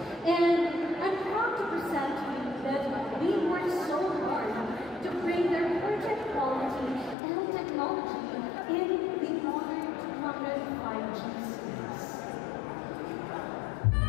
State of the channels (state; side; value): drops out; right; at 7.2 s